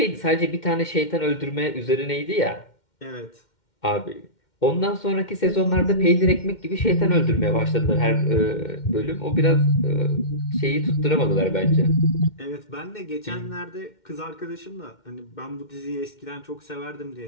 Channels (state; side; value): late; right; 2.1 ms